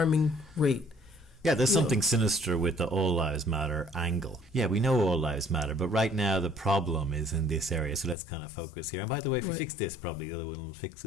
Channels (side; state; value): right; drops out; at 8.2 s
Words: rate. Yeah, there's something sinister with the all lives matter angle. Yeah, we know all lives matter, but right now the problem is in this area, so let's kind of focus here. And by the way, if we fix this, probably the other one will fix